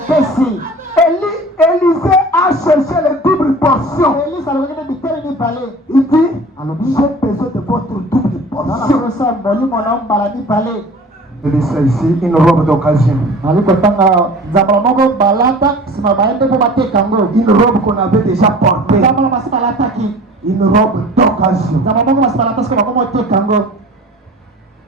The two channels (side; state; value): both; normal; correlation 0.42